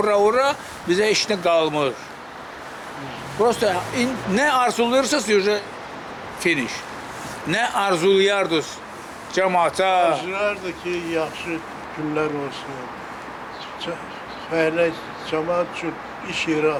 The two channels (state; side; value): identical; both; correlation 1.00